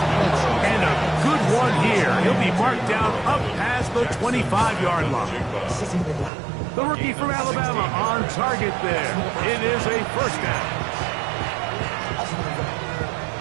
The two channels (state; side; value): drops out; left; at 6.3 s